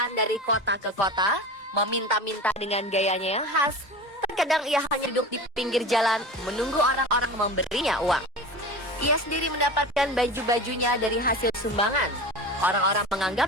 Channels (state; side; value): normal; both; correlation 0.31